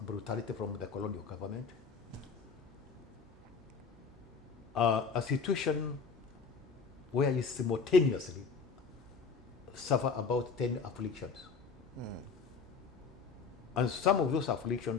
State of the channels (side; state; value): right; quieter; 5.3 dB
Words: brutality from the colonial government. A situation where you simultaneously suffer about 10 afflictions. And some of those